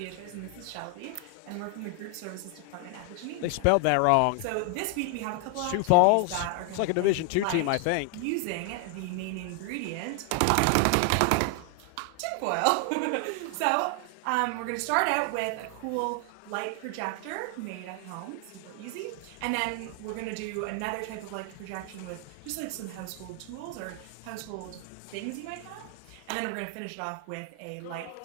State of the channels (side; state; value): both; different; correlation 0.00